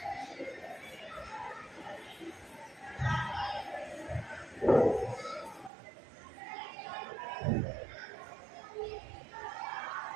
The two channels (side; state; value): left; drops out; at 5.7 s